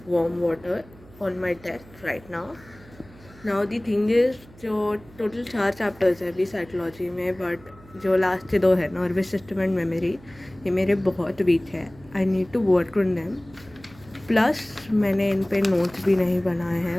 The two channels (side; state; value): right; noise; hum, 23 dB below the sound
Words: warm water on my desk right now. Now the thing is, जो total 4 chapters है अभी psychology में, but जो last के 2 है nervous system and memory, ये मेरे बहुत वीक है. I need to work on them. Plus मैंने इन पे नोट्स भी नहीं बनाए हैं.